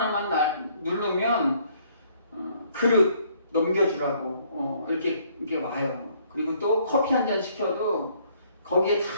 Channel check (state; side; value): inverted; both; correlation -0.64